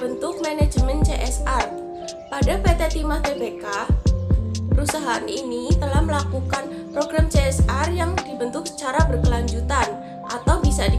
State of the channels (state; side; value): identical; both; correlation 1.00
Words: manajemen CSR. Pada PT Timah Tbk, perusahaan ini telah melakukan program CSR yang dibentuk secara berkelanjutan, atau bisa